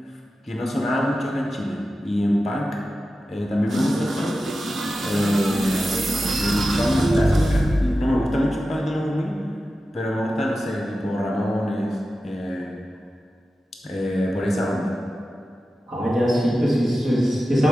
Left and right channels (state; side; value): normal; both; correlation 0.93